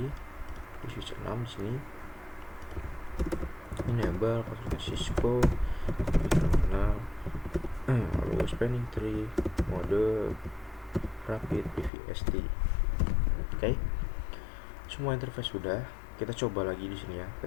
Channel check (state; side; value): drops out; right; at 11.9 s